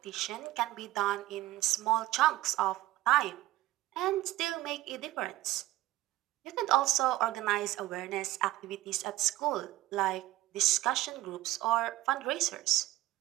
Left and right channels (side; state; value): left; quieter; 16.4 dB